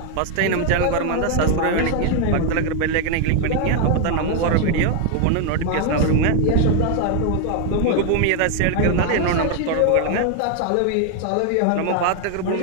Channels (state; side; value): different; both; correlation 0.00